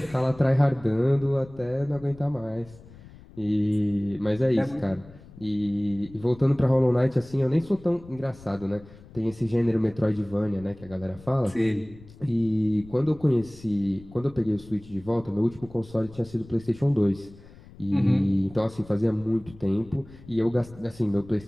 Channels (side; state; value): left; noise; rumble, 21 dB below the sound